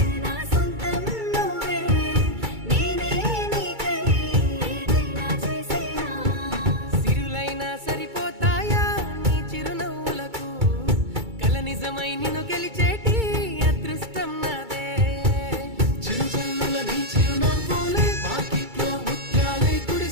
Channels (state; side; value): late; left; 2.3 ms